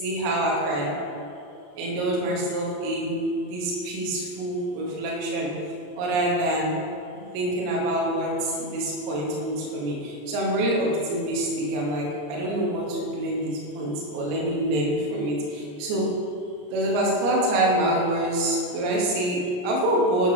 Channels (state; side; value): late; left; 34 ms